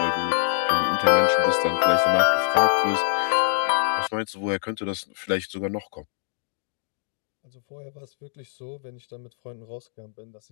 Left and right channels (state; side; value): silent; right; digital silence